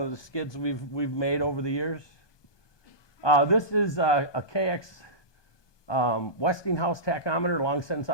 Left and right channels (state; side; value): late; right; 1.2 ms